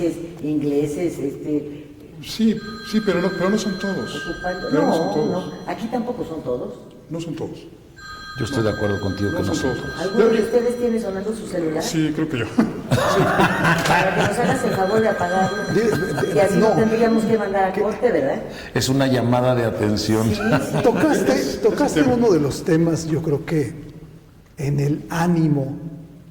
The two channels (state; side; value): identical; both; correlation 1.00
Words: ingleses, Sí, pero no son todos. No, son todos. no, aquí tampoco son todos. No son todos. Yo estoy de acuerdo contigo que no son todos. ¿Alguno de ustedes tiene sonando su celular? Sí, creo que yo. Para que nos hagas el favor de apagarlo. Y así no tendríamos que mandar a corte, ¿verdad? Es una llamada de atención. Sí. Tocaste uno de los temas, yo creo que en el ánimo